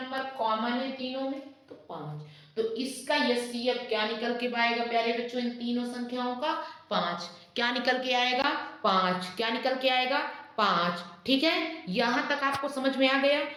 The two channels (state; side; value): identical; both; correlation 1.00